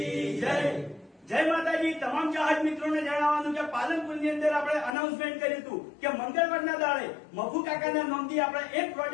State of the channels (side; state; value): right; drops out; at 4.9 s